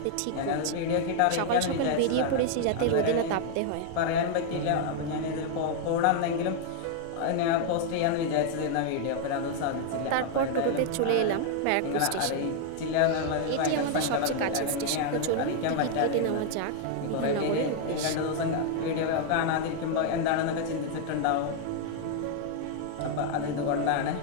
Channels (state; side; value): different; both; correlation 0.00